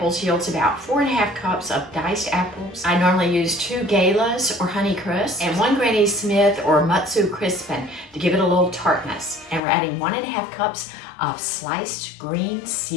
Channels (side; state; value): right; drops out; at 9.6 s